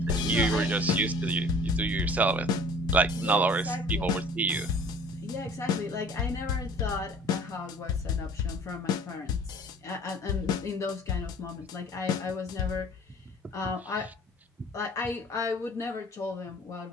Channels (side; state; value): both; normal; correlation 0.50